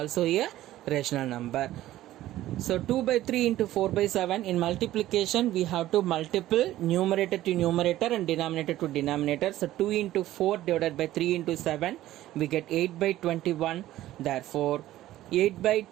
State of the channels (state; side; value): quieter; left; 14.6 dB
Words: a rational number. So 2 by 3 into 4 by 7 in multiplication we have to multiple numerator to numerator and denominator to denominator. So 2 into 4 divided by 3 into 7 we get 8 by 21. Therefore 8 by